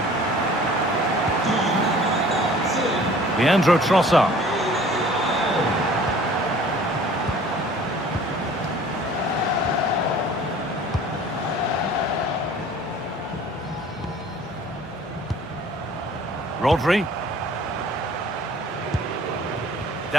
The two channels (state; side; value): normal; both; correlation 0.49